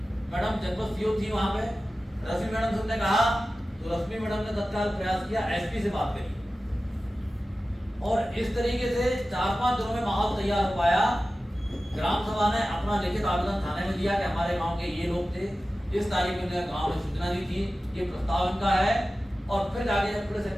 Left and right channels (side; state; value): both; normal; correlation 0.95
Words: मैडम जनपद सीओ थी वहां पे। रश्मि मैडम से उसने कहा, तो रश्मि मैडम ने तत्काल प्रयास किया, एसपी से बात करी, और इस तरीके से 4-5 दिनों में माहौल तैयार हो पाया। ग्राम सभा ने अपना लिखित आवेदन थाने में दिया कि हमारे गांव के ये लोग थे, इस तारीख में गांव में सूचना दी थी, ये प्रस्ताव इनका है। और फिर आगे जब पुलिस